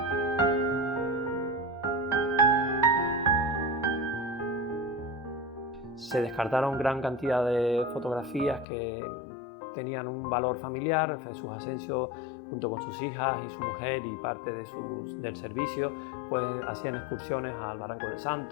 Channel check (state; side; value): drops out; right; at 8.7 s